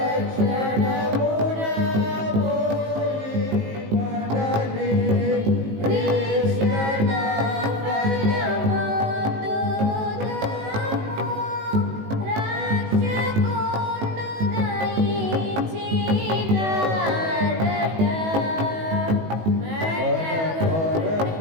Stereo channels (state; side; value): late; left; 19 ms